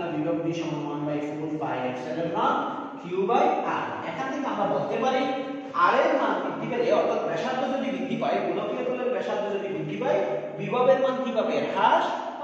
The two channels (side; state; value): both; identical; correlation 1.00